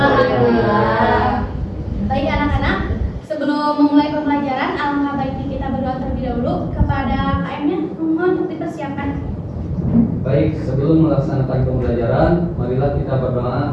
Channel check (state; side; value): identical; both; correlation 1.00